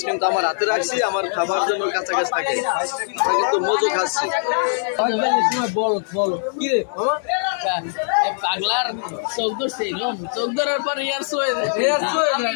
কিন্তু আমার হাতে রাখছি, আমার খাবার জন্য কাছাকাছি থাকে। আমরা কিন্তু মজু খাচ্ছি। পাগলার চোখ ধরছে, চোখ ধরার পর ইয়ার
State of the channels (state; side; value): silent; right; digital silence